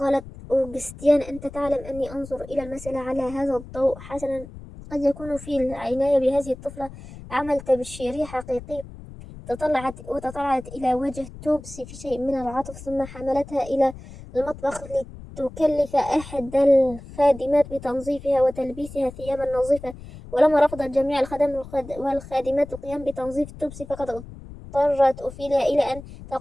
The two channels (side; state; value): left; noise; rumble, 15 dB below the sound